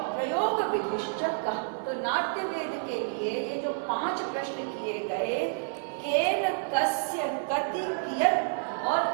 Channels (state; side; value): silent; left; digital silence